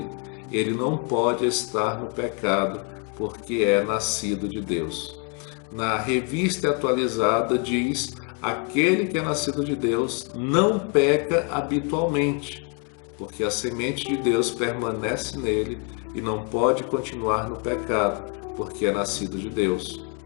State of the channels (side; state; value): right; quieter; 37.9 dB